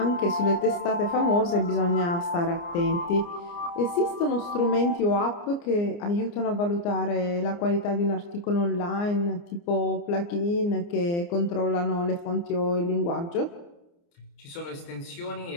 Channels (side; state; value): right; late; 29 ms